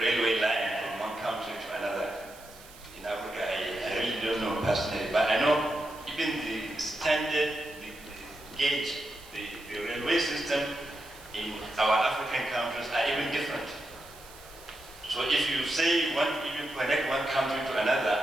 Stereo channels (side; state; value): right; noise; hiss, 20 dB below the sound